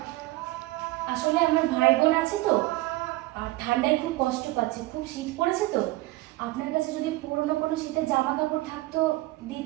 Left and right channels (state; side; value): quieter; left; 19.2 dB